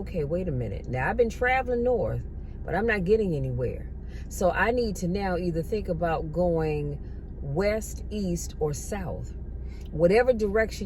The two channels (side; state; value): both; identical; correlation 1.00